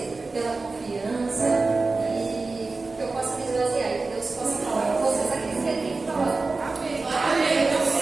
pela confiança e que eu possa me esvaziar e que Deus possa falar com vocês aquilo que Ele tem que falar. Amém.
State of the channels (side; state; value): left; quieter; 3.7 dB